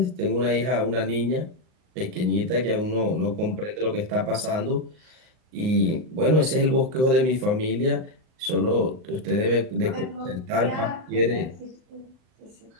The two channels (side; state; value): left; late; 38 ms